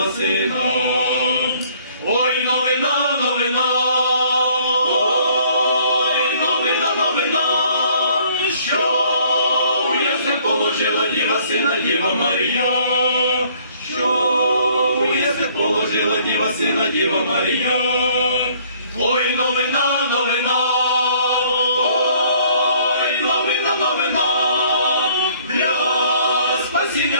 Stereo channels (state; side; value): inverted; both; correlation -0.60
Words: сина. Ой, новина, новина, ой, новина, новина, що у яслях положила Діва сина, Діва Марія, що у яслях положила Діва сина, Діва Марія. Ой, новина, новина, ой, новина, новина, для